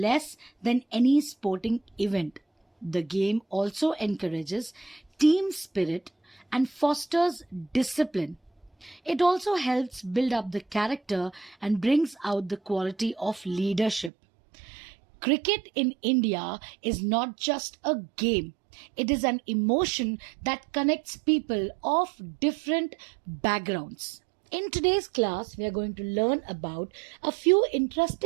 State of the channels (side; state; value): left; drops out; at 14.1 s